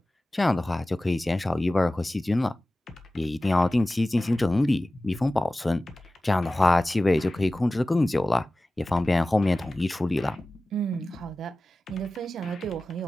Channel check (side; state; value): both; normal; correlation 0.96